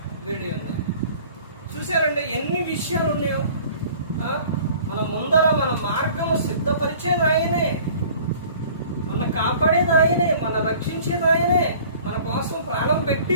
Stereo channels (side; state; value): both; inverted; correlation -0.49